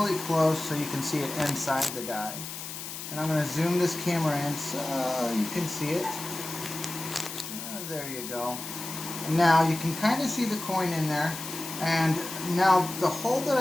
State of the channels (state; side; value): noise; left; hiss, 9 dB below the sound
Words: close so you can see it inside the die. And I'm going to zoom this camera in so you can see it. There you go. Now you can kind of see the coin in there, and now the hole that